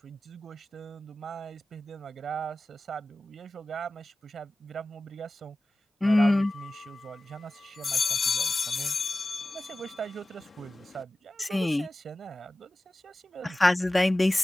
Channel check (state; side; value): normal; both; correlation 0.96